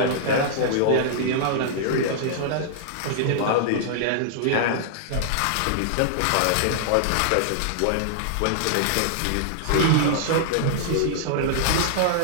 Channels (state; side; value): different; both; correlation -0.01